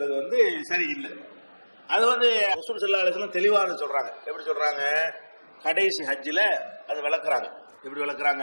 சரியில்லை. அது ரசூல் ஸல்லல்லாஹு அலைஹி வஸல்லம் தெளிவாக சொல்றாங்க. எப்படி சொல்றாங்க? கடைசி ஹஜ்ஜில அது விளக்குறாங்க. எப்படி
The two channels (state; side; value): inverted; both; correlation -1.00